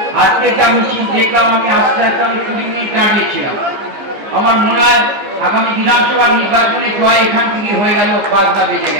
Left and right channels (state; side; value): late; left; 15 ms